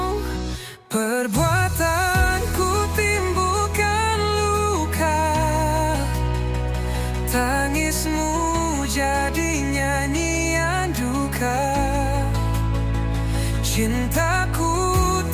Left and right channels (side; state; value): both; identical; correlation 1.00